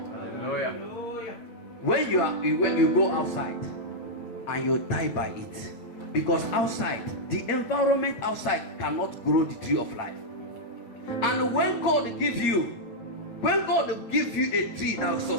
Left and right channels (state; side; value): late; right; 9.0 ms